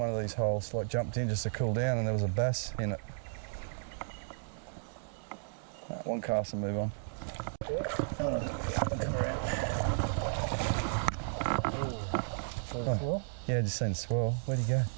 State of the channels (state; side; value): silent; left; digital silence